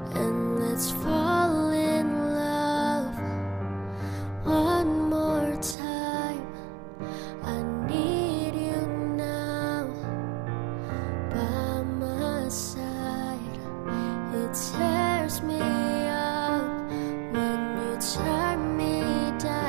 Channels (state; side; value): drops out; left; at 5.8 s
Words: and let's fall in love one more time. I need you now by my side. It tears me up when you turn me